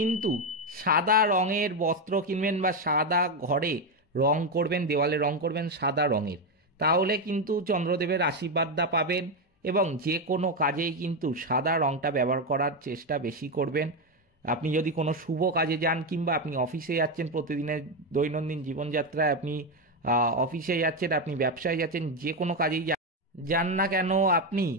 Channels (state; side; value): normal; both; correlation 0.09